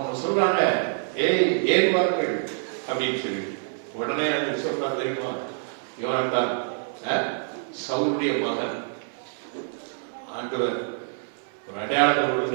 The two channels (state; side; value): silent; left; digital silence